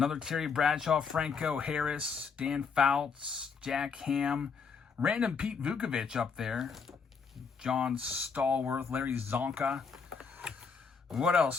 Terry Bradshaw, Franco Harris, Dan Fouts, Jack Ham, random Pete Vukovich up there, John Stallworth, Larry Zonka. What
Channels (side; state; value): right; quieter; 5.7 dB